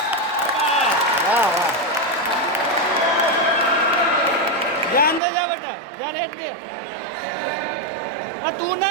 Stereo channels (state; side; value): drops out; left; at 5.2 s